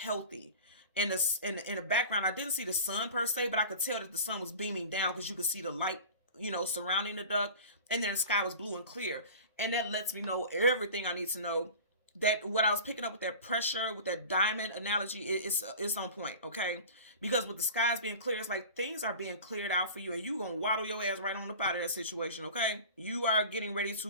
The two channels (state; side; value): inverted; both; correlation -0.37